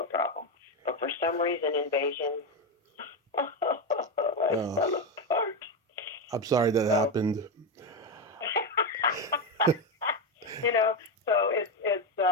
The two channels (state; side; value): normal; both; correlation 0.11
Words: problem. But for some reason, Invasion, I fell apart. I'm sorry that happened. So it's